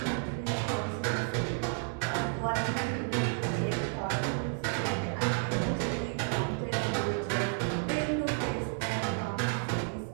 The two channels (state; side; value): silent; left; 57 dB below the other